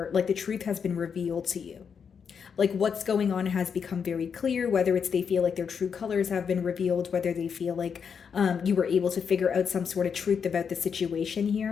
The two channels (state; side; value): quieter; right; 6.7 dB